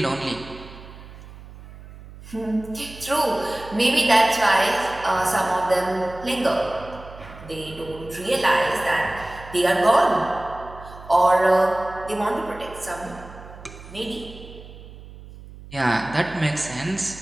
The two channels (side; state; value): right; noise; hum, 17 dB below the sound